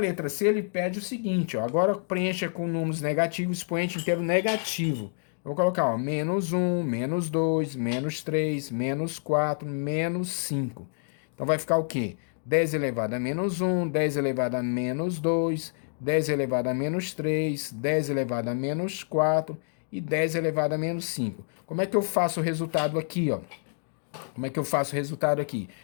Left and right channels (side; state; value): right; silent; digital silence